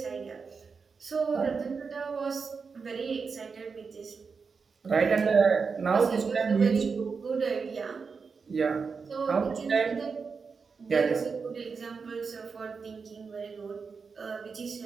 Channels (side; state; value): left; quieter; 5.2 dB